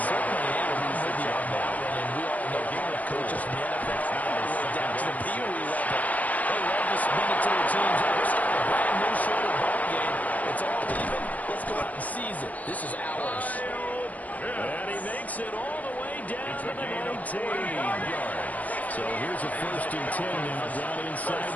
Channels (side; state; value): right; late; 0.076 ms